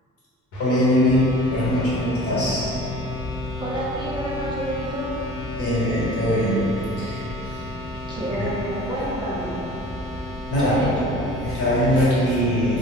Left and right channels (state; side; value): normal; both; correlation 0.44